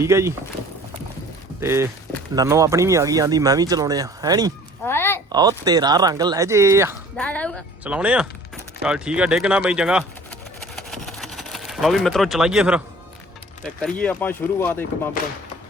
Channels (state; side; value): normal; both; correlation 0.49